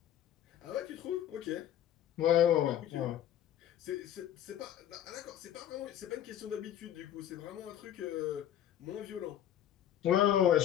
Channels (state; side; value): quieter; right; 11.0 dB